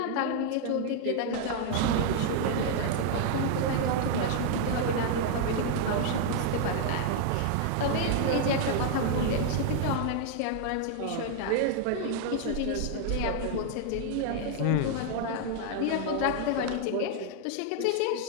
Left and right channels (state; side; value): different; both; correlation 0.00